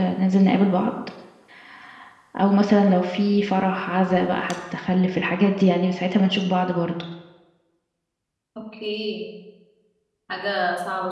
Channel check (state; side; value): identical; both; correlation 1.00